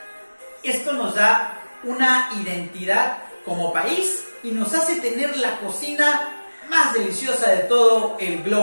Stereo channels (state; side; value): inverted; both; correlation -1.00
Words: Esto nos da una identidad como país y nos hace tener la cocina más deliciosa de todo el